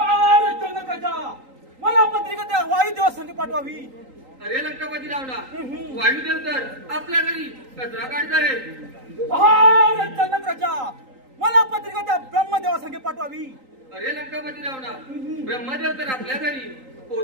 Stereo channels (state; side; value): late; left; 3.8 ms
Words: जनक राजा मला पत्रिका त्या वायुदेवा संग पाठवावी. अरे लंकापती रावणा वायुदेव तर आपल्या घरी कचरा काढत आहे. अरे जनक राजा मला पत्रिका त्या ब्रह्मदेवा संगे पाठवावी. अरे लंकापती रावणा ब्रह्मदेव तर आपल्या घरी